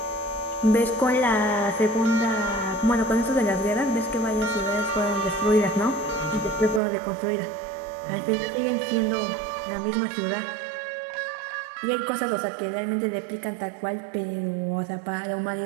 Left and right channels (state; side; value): drops out; left; at 6.8 s